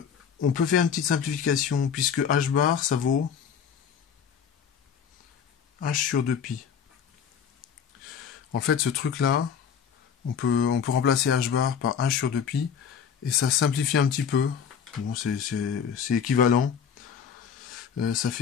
On peut faire une petite simplification, puisque h bar ça vaut h sur 2 pi. En fait ce truc là, on peut remplacer h bar par h sur 2 pi, et ça simplifie un petit peu. Bon, c'est équivalent. Ça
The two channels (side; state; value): right; quieter; 7.4 dB